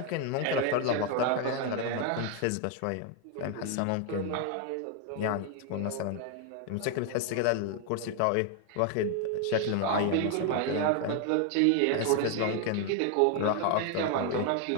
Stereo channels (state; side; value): different; both; correlation 0.01